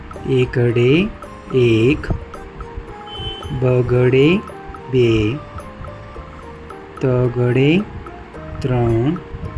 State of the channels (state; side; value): identical; both; correlation 1.00